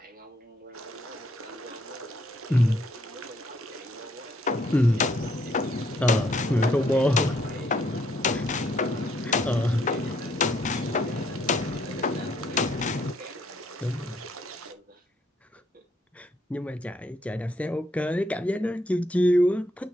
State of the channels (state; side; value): normal; both; correlation 0.70